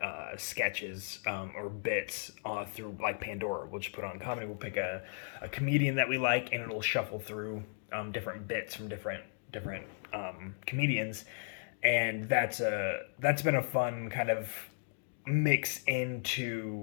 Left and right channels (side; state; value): right; silent; digital silence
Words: sketches or bits through like Pandora. We'll just put on comedy. We'll pick a comedian that we like, and it'll shuffle through different bits from different comedians, and that's been a fun kind of mix